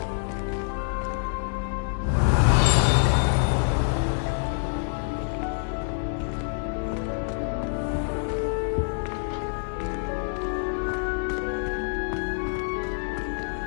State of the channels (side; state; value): right; silent; digital silence